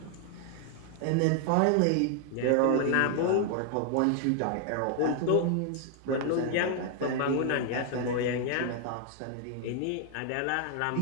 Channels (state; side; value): different; both; correlation 0.00